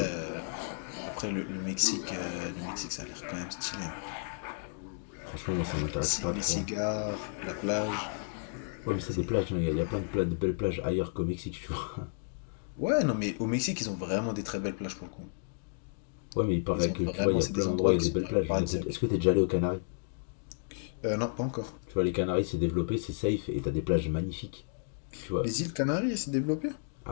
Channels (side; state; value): right; silent; digital silence